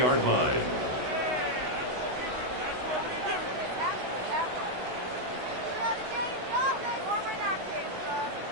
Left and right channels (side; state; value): left; late; 16 ms